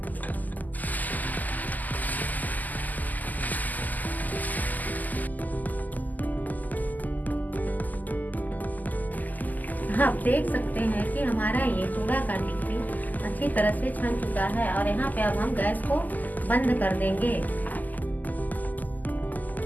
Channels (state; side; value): late; right; 0.082 ms